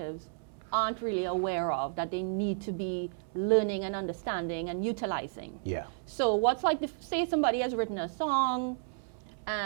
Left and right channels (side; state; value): left; silent; 56 dB below the other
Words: aren't really aware of, that they need to be learning and understanding and utilizing. Yeah. So what's like, say somebody has written a song